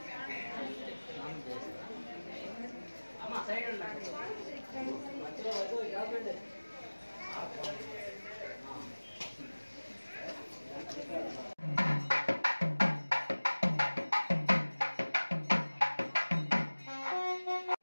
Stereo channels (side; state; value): both; inverted; correlation -1.00